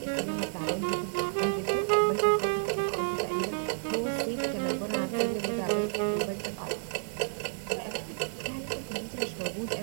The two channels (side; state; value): left; silent; 57 dB below the other